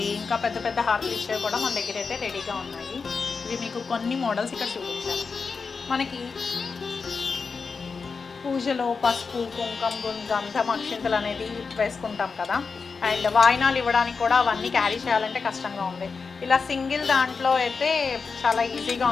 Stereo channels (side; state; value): right; quieter; 5.0 dB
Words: ఇంకా పెద్ద పెద్ద హారతులు ఇచ్చేవి కూడా మన దగ్గర అయితే రెడీగా ఉన్నాయి. ఇవి మీకు కొన్ని మోడల్స్ ఇక్కడ చూపించాను. మనకి పూజలో పసుపు, కుంకుమ, గంధం, అక్షింతలు అనేది వేసుకుంటాం కదా. అండ్ వాయినాలు ఇవ్వడానికి కూడా అవన్నీ క్యారీ చేయాలంటే కష్టంగా ఉంది. ఇలా సింగిల్ దాంట్లో అయితే చాలా ఈజీగా